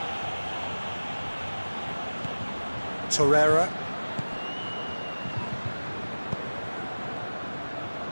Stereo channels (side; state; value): both; inverted; correlation -1.00